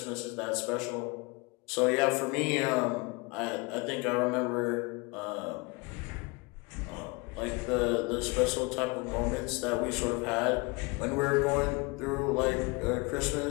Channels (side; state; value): right; quieter; 27.3 dB